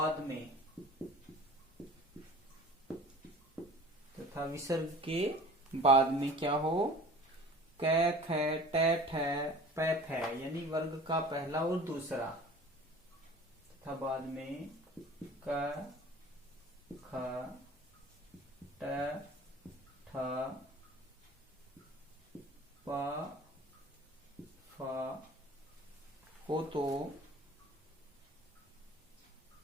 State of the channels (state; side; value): normal; both; correlation 0.43